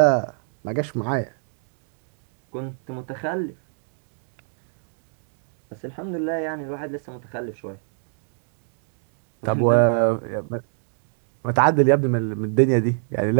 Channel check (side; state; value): left; silent; digital silence